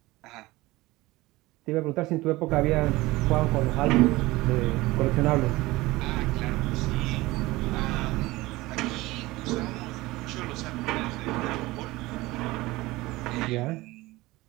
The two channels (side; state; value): left; quieter; 19.9 dB